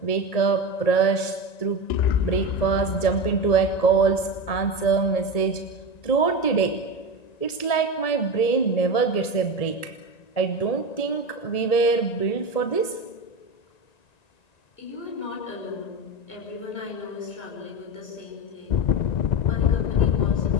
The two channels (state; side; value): late; right; 1.7 ms